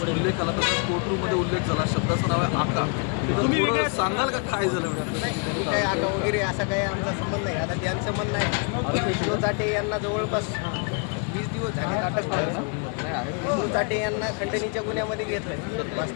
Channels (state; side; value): quieter; right; 36.1 dB